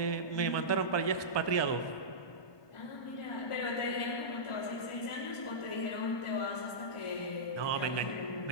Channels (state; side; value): late; right; 1.2 ms